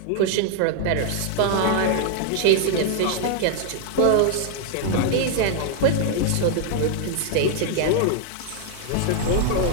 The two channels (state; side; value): different; both; correlation 0.00